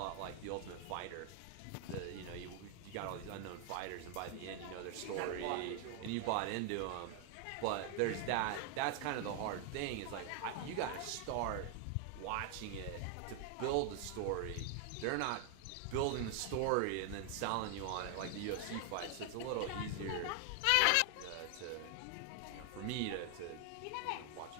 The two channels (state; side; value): different; both; correlation 0.00